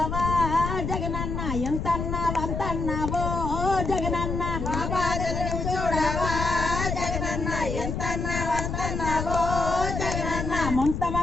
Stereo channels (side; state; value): left; noise; rumble, 3 dB below the sound